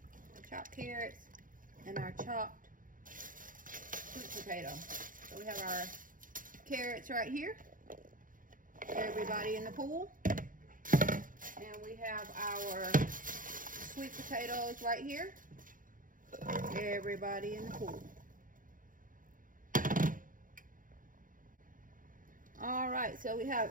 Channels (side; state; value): left; late; 0.39 ms